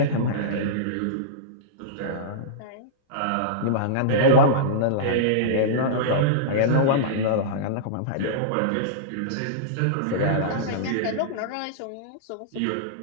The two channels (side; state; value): both; different; correlation -0.03